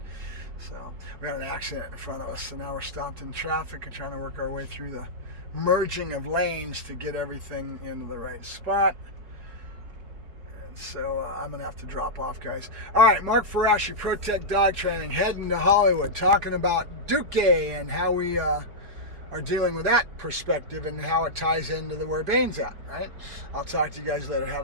so we had an accident in front of us, so now we're stopped in traffic and trying to work our way through the merging of lanes to get everything into the right spot. And so I'm going to have to drop off, guys. All right, Mark Ferrasci, ProTech Dog Training, heading to Hollywood, talking about Duk-ie and how we are dealing with that perspective and how it ties into where Bane's at, right? I'll talk to you guys later.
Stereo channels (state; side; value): late; left; 4.8 ms